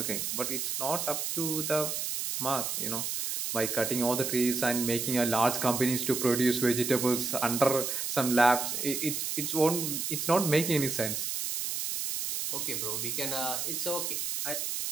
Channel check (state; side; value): noise; right; hiss, 2 dB below the sound